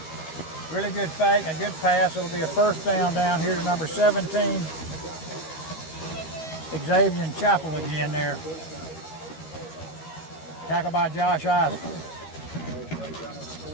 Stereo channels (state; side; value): late; right; 13 ms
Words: Really good fake, a good pass. It'll be a first down here to number 17. Xavier Chapel again there. Tackled by Josh Isaac.